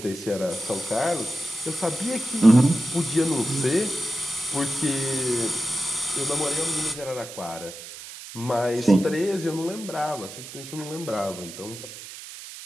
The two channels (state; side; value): noise; right; hiss, 13 dB below the sound